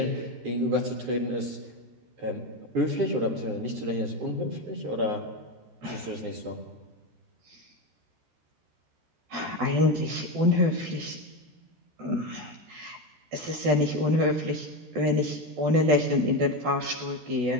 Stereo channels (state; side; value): late; left; 13 ms